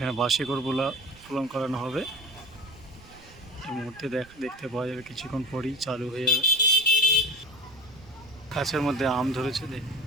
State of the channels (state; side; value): noise; right; rumble, 22 dB below the sound